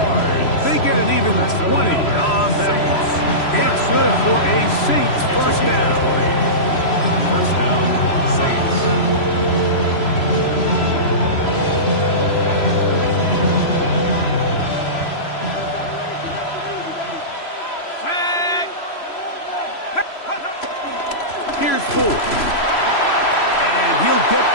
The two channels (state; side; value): late; right; 3.0 ms